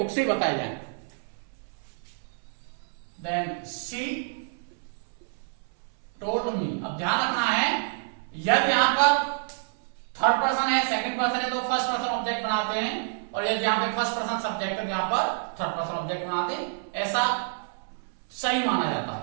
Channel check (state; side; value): silent; left; 59 dB below the other